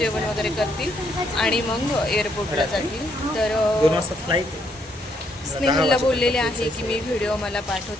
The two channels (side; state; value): both; normal; correlation 0.73